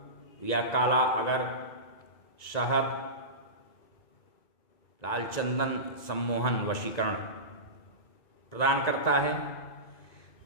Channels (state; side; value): late; right; 1.9 ms